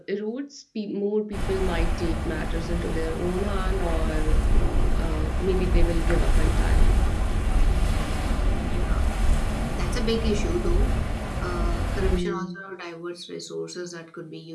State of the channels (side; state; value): both; identical; correlation 1.00